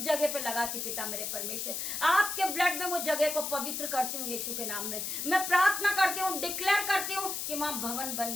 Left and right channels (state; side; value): noise; left; hiss, 3 dB below the sound